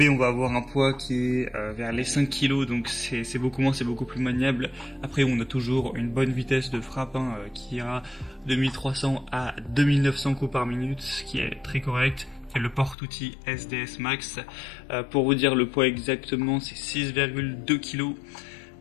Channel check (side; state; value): right; drops out; at 13.0 s